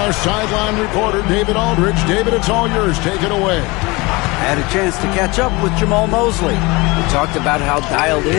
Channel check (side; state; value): right; quieter; 24.4 dB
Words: sideline reporter, David Aldridge. David, it's all yours. Take it away. I had a chance to catch up with Jamal Mosley. We talked about how dialed